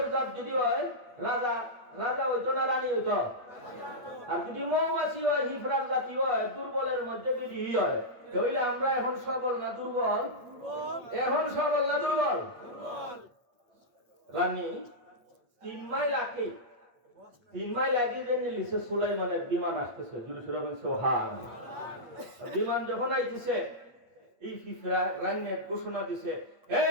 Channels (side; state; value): left; late; 8.7 ms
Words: জাত যদি হয় রাজা রাজা হইতো না রানী হইতো? আর যদি মৌমাছি হয় ফিফরার জাতি হয় দুর্বলের মধ্যে যদি হয় তাহলে আমরা এখন সবল না দুর্বল? এখন সবল না দুর্বল? রানী 3 মাইল আগে 3 মাইল আগে যে নিলিছে সুলাইমানের বিমান আসতেছে জুরি সুরাবেন সোহান। বিমান যখন আইতেছে এই ফিফরা রাইনে ঘোষণা দিছে, হে